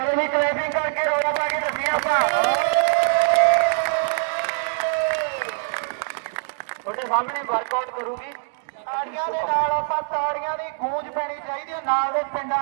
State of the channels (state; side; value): silent; left; digital silence